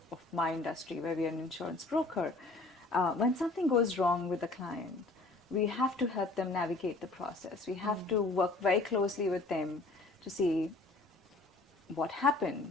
of my industry, where we are an insurance broker. When something goes wrong with the client, we have to help them navigate the process. We have to work very closely with them to see what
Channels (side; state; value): right; quieter; 3.2 dB